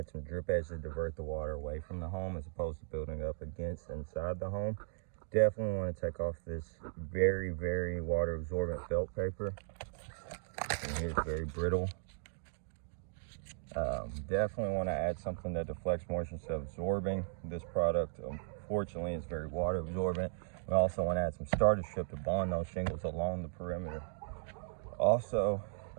some drip edge to divert the water away from the home as opposed to building up against inside the home. Definitely want to take off this very, very water absorbent felt paper. And here's very brittle. Definitely want to add something that deflects moisture instead of absorbing. This product, unfortunately, is very water absorbent. We also want to add some starter strip to bond those shingles along the perimeter. Also,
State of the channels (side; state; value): left; silent; digital silence